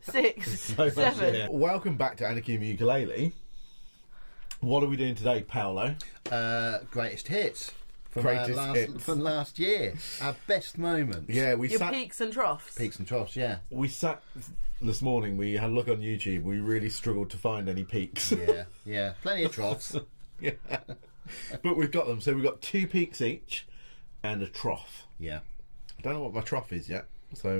6, So 7. Welcome back to Anarchy in the Ukulele. What are we doing today, Paolo? Greatest hits. From Hits. from last year. Our best moments. Yeah, Your peaks and troughs. Peaks and troughs, yeah. We sat this morning, we had a look on YouTube, we really struggled to find any peaks. Yeah. Plenty of troughs. Yeah. But we've got them. So we've got 2 peaks each and a trough. Yeah. I don't know what my trough is yet,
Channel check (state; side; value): inverted; both; correlation -1.00